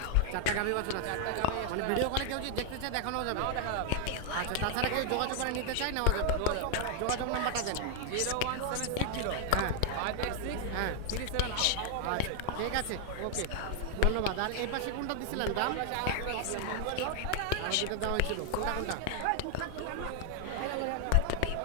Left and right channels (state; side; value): different; both; correlation 0.00